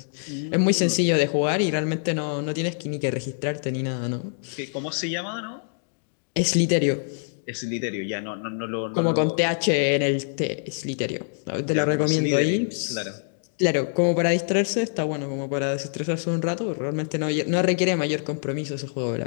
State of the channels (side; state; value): right; silent; digital silence